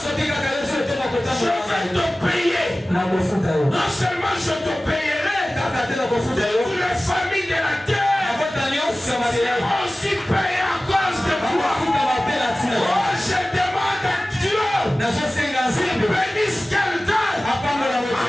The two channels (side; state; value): both; normal; correlation 0.97